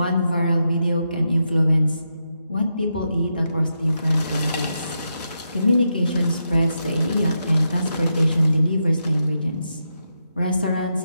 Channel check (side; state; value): both; inverted; correlation -0.85